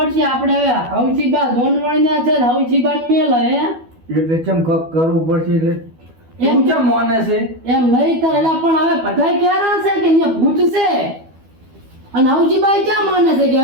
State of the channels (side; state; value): left; late; 12 ms